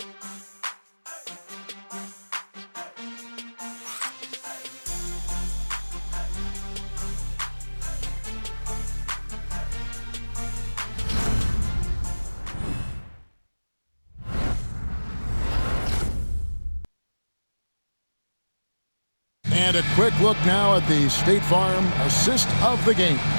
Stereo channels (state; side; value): inverted; both; correlation -1.00